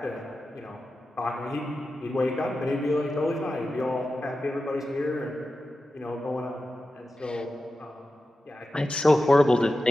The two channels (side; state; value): both; normal; correlation 0.92